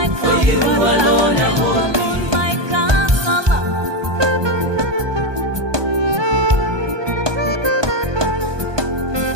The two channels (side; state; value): left; late; 1.2 ms